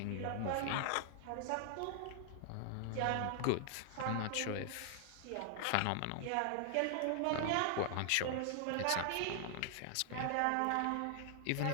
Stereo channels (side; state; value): both; different; correlation 0.00